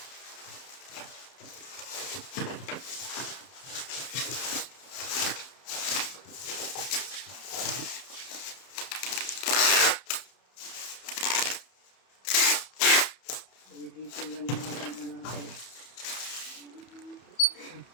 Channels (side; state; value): right; late; 31 ms